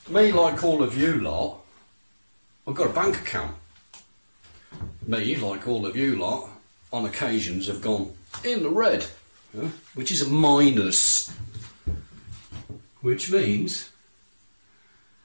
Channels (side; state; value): both; inverted; correlation -1.00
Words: me, like all of you lot, I've got a bank account. Me, like all of you lot, on occasions have gone in the red, which is a minus, which means